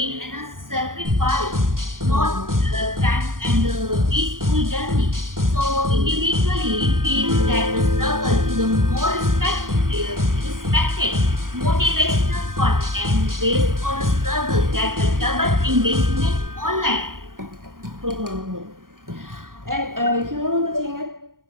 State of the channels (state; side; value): late; left; 0.91 ms